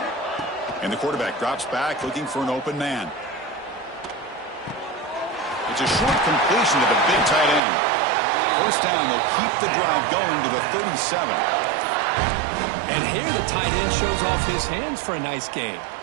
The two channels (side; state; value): left; drops out; at 7.6 s